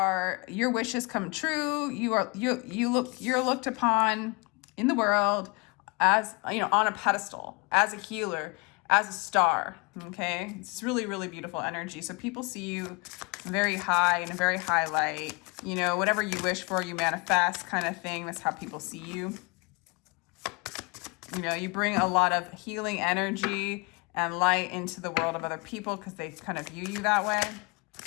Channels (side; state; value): right; quieter; 29.7 dB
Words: wishes come true. You're looked upon in the world as, you know, on a pedestal, as a healer, as a star. Okay, it's really, really beautiful energy. So people see you very high, in a very high light. You know, whatever you wish for, you manifest, kind of thing. That's how people see you. You know, you bring a lot of healing energy and light into the world of other people because they kind of view you that way.